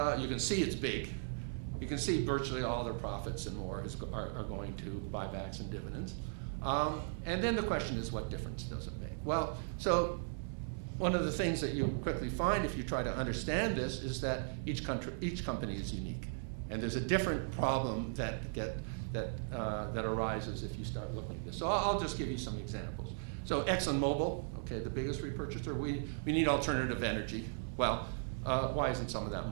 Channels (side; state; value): left; silent; 53 dB below the other